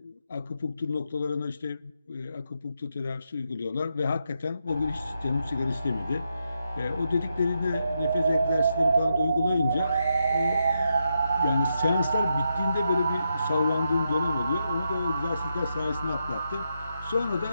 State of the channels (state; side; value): inverted; both; correlation -0.83